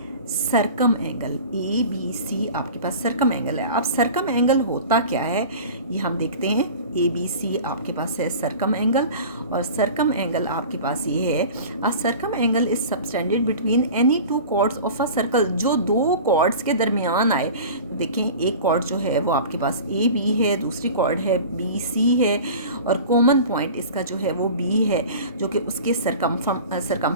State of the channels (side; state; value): both; inverted; correlation -0.38